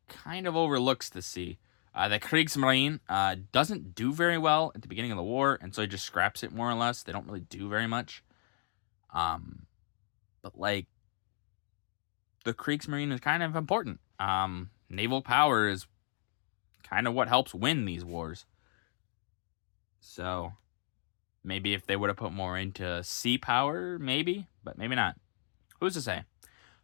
kind of overlooks the sea. The Kriegsmarine doesn't do very well at the beginning of the war, and so he just scraps it more or less. They don't really do very much. But like, the Kriegsmarine is kind of important. Naval power is kind of what helps win these wars. So maybe if they would have put more into sea power, maybe, but maybe not. Who's to say?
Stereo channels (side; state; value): right; silent; digital silence